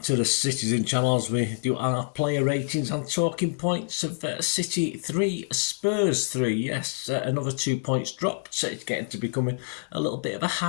to the Citizen channel as we do our player ratings and talking points of City 3, Spurs 3. Yes, another 2 points dropped. So it's getting to becoming a little bit of a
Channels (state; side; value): silent; right; digital silence